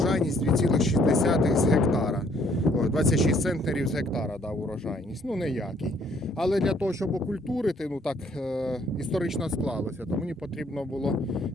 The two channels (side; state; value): both; normal; correlation 0.64